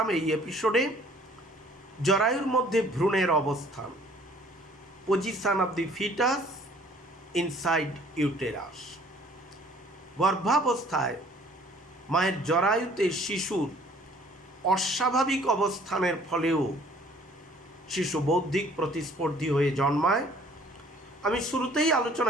এই এপিসোডে। জরায়ুর মধ্যে ভ্রূণের অবস্থান, position of the foetus inside uterus. গর্ভাবস্থায় মায়ের জরায়ুতে শিশুর অস্বাভাবিক অবস্থানের ফলেও শিশু বৌদ্ধিক প্রতিস্পর্ধী হয়ে জন্মায়। আমি শুরুতেই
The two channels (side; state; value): both; normal; correlation 0.56